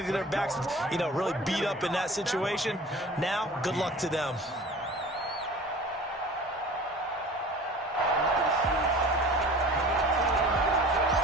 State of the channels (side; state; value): both; normal; correlation 0.42